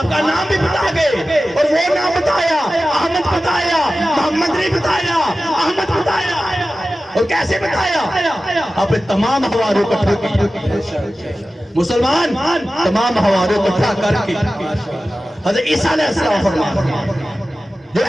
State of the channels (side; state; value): both; normal; correlation 0.95